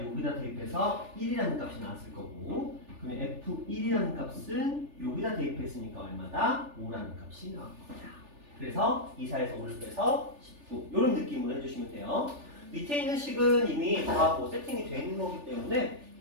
여기다 대입해서 1이라는 값이 나왔을 거고 그러면 F1이라는 값은 여기다 대입했으니까 얼마다? 5라는 값이 나올 겁니다. 그래서 2, 4에서 5를 빼서 19 이런 느낌으로 해주시면 돼요. 밑에 있는 식은 이미 다 뭐 세팅이 되어 있는 거기 때문에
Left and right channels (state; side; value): late; left; 3.4 ms